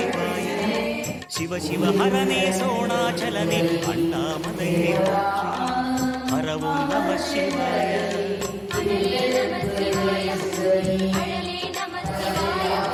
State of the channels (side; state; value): both; identical; correlation 1.00